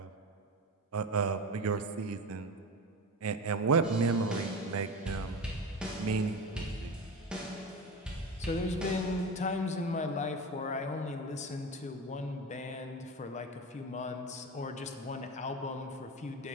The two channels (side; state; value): both; normal; correlation 0.25